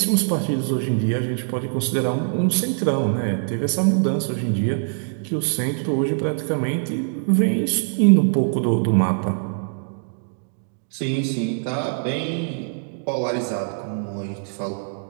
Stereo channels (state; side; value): silent; left; digital silence